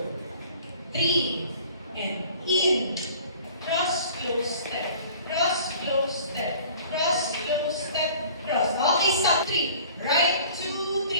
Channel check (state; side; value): inverted; both; correlation -0.48